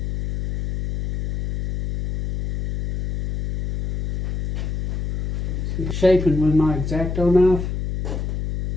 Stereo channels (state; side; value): noise; left; hum, 4 dB below the sound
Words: Shaping with my X-Acto knife.